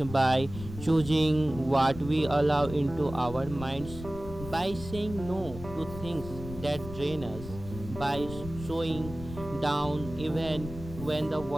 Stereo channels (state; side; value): noise; left; rumble, 12 dB below the sound